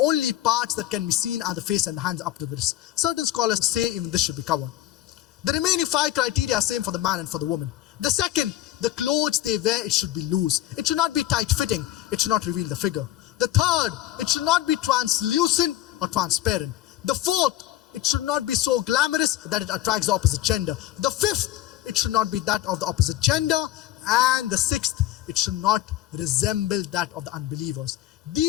parts that can be seen are the face and the hands up to the wrist. Certain scholars say even this should be covered. The remaining 5 criteria are same for the man and for the woman. The second, the clothes they wear, it should be loose. It should not be tight-fitting. It should not reveal the figure. The third, it should not be translucent or transparent. The fourth, it should not be so glamorous that it attracts the opposite gender. The fifth, it should not be that of the opposite gender. And the sixth, it should not resemble that of the unbelievers.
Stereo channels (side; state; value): right; quieter; 14.1 dB